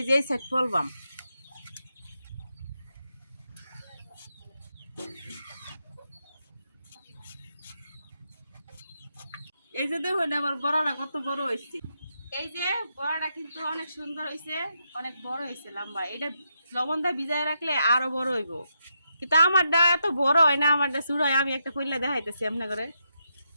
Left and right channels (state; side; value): inverted; both; correlation -0.82